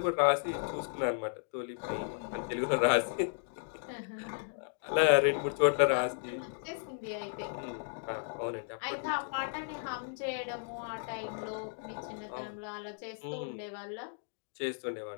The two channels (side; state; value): right; silent; digital silence